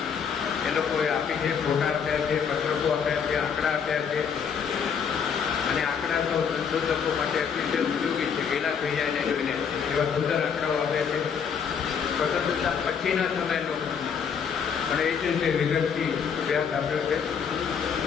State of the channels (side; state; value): right; quieter; 6.9 dB